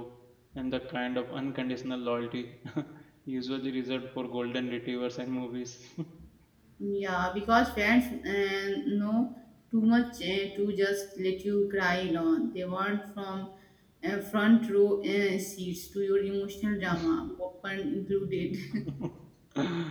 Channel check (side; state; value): both; identical; correlation 1.00